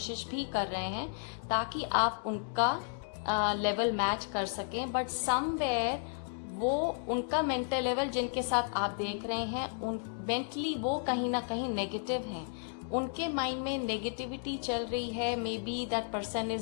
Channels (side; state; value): right; silent; digital silence